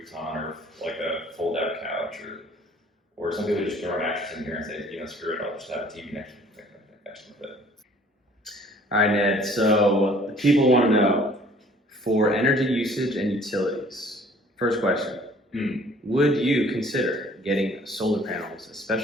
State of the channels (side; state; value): both; normal; correlation 0.55